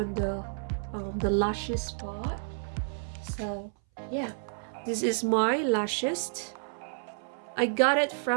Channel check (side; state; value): left; silent; 58 dB below the other